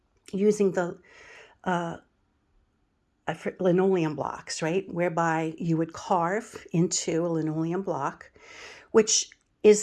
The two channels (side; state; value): both; identical; correlation 1.00